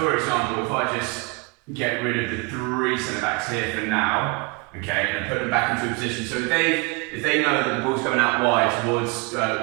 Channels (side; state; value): left; quieter; 27.9 dB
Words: example, if I just get rid of the three centre-backs here for now, okay, and put them back into a position. So if they know that the ball's going out wide towards